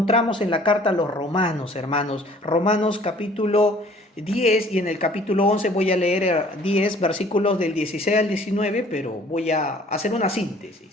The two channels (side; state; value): both; normal; correlation 0.54